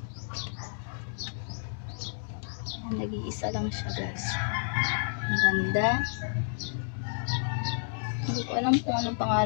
Ayan, nag-iisa lang siya, guys. Ang ganda. Hindi ko alam kung anong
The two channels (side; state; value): right; silent; digital silence